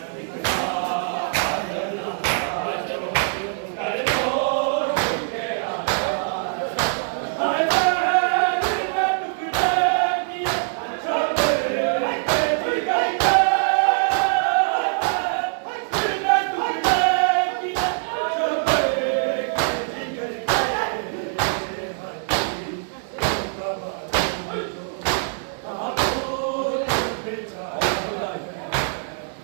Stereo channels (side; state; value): left; silent; 63 dB below the other